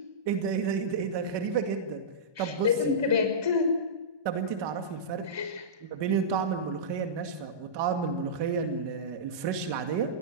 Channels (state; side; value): late; left; 1.2 ms